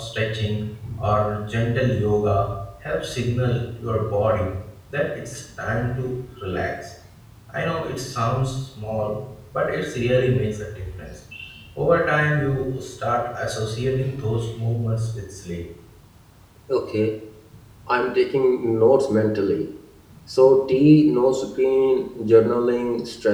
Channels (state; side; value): identical; both; correlation 1.00